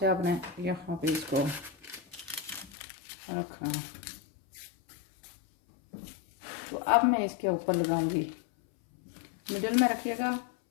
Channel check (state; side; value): drops out; right; at 2.7 s